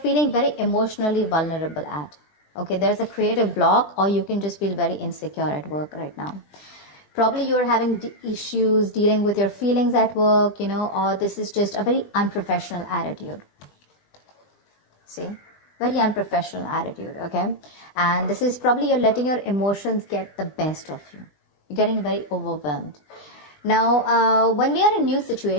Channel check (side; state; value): right; late; 20 ms